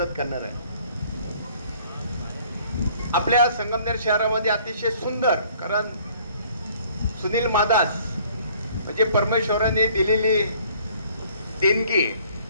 करणार आहे. आपल्या संगमनेर शहरामध्ये अतिशय सुंदर, कारण सुनील मादास म्हणजे परमेश्वराने दिलेली देणगी,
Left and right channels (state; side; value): inverted; both; correlation -0.57